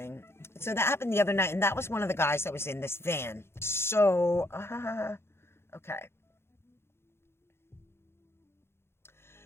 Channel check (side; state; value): right; late; 0.12 ms